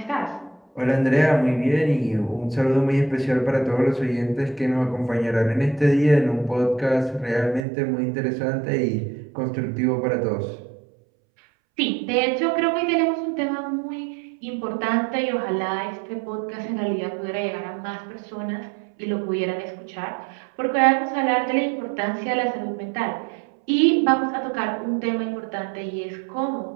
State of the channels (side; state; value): left; drops out; at 7.6 s